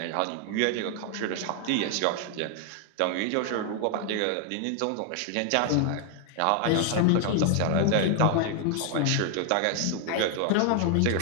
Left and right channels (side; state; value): both; different; correlation 0.00